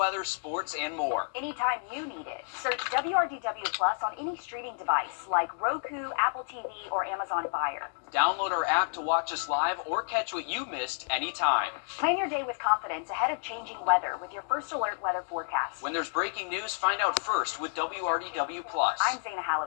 sports, and more. Anytime you need it. Search WRDW+ on any streaming device like Roku, Apple TV, or Amazon Fire. Download our app to watch us live or catch what you missed anytime. Plan your day with confidence ahead of changing weather with your first alert weather forecast. When there's breaking news, find out first with WRDW+. I'm Zana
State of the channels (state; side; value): silent; right; digital silence